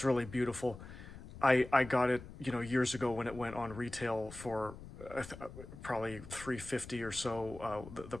really beautiful. I got it, years ago when it went on retail for probably $350 or so, the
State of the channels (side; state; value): left; noise; rumble, 14 dB below the sound